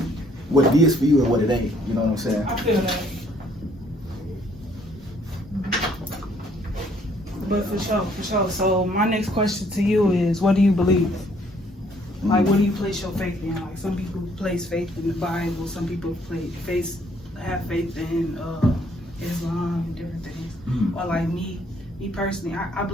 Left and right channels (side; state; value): both; normal; correlation 0.64